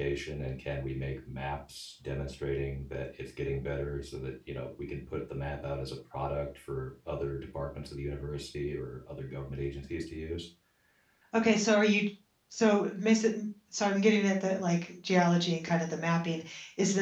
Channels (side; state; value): both; identical; correlation 1.00